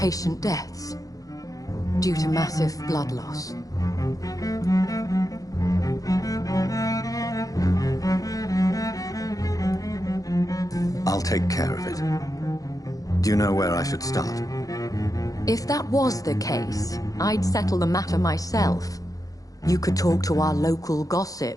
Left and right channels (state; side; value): late; right; 0.17 ms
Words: deaths due to massive blood loss. I'll take care of it. Do you know where I should start? If that was the case, I'd settle the matter myself. You could talk to our local